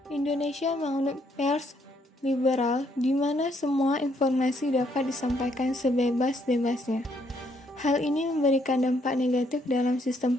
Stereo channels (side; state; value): both; normal; correlation 0.71